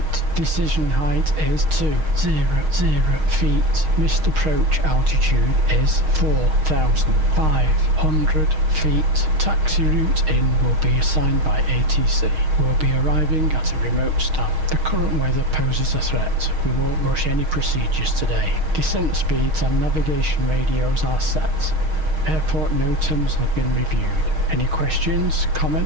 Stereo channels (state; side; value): late; left; 6.4 ms